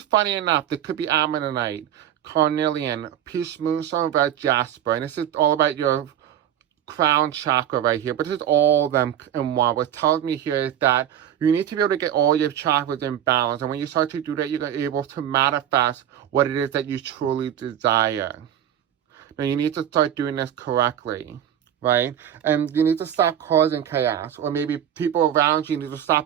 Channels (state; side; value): quieter; left; 10.4 dB